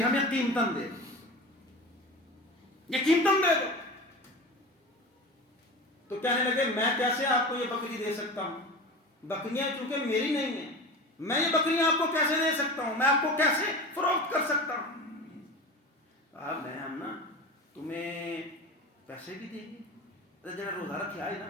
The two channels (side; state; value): both; normal; correlation 0.31